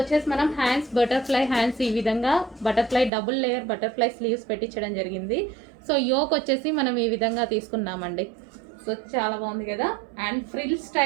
మనం హ్యాండ్స్ బటర్ఫ్లై హ్యాండ్స్ ఈ విధంగా butterfly double layer butterfly sleeves పెట్టించడం జరిగింది. సో యోక్ వచ్చేసి మనం ఈ విధంగా తీసుకున్నామండి. సో చాలా బాగుంది కదా. అండ్ ఫ్రిల్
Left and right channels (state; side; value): drops out; left; at 3.1 s